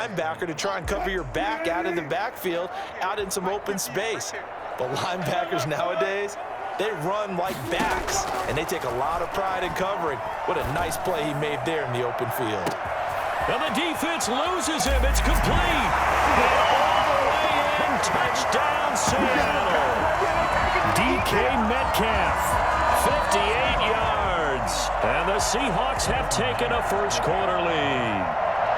to try and cover your back out in the backfield, out in some open space. The linebackers nowadays, they run like backs, and they take a lot of pride in covering. What a nice play he made there in the open field. And the defense loses him. It's complete. And all the way in, touchdown Seattle. DK Metcalf, 58 yards. And the Seahawks have taken a first quarter lead.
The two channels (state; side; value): identical; both; correlation 1.00